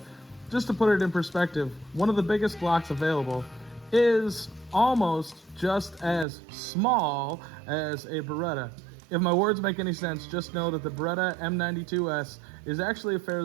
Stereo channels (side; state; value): left; drops out; at 6.2 s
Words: just to put it in perspective, one of the biggest Glocks available is almost just as small as a Beretta. If my words make any sense, just know that the Beretta M92S is actually a